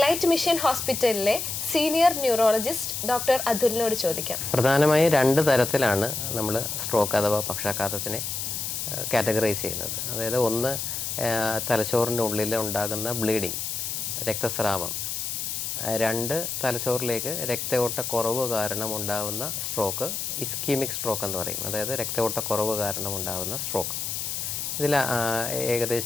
മിഷൻ ഹോസ്പിറ്റലിലെ സീനിയർ ന്യൂറോളജിസ്റ്റ് ഡോക്ടർ അതുലിനോട് ചോദിക്കാം. പ്രധാനമായും 2 തരത്തിലാണ് നമ്മൾ സ്ട്രോക്ക് അഥവാ പക്ഷാഘാതത്തിനെ കാറ്റഗറൈസ് ചെയ്യുന്നത്. അതായത് ഒന്ന്, തലച്ചോറിൻ്റെ ഉള്ളിൽ ഉണ്ടാകുന്ന ബ്ലീഡിങ്, രക്തസ്രാവം. 2, തലച്ചോറിലേക്ക് രക്തയോട്ടക്കുറവ് കാരണം ഉണ്ടാകുന്ന സ്ട്രോക്ക്, ഇസ്കീമിക് സ്ട്രോക്ക് എന്ന് പറയും. അതായത് രക്തയോട്ടക്കുറവ് കാരണം ഉണ്ടാകുന്ന സ്ട്രോക്ക്. ഇതിൽ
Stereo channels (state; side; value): noise; left; hiss, 3 dB below the sound